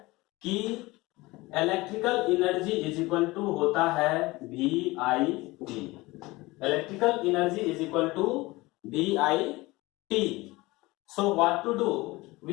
कि electrical energy is equal to होता है VIT। Electrical energy is equal to VIT। So what to do,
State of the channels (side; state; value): right; quieter; 21.3 dB